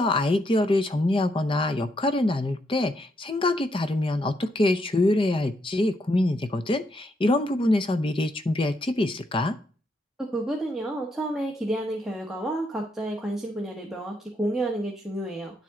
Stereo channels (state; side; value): normal; both; correlation 0.77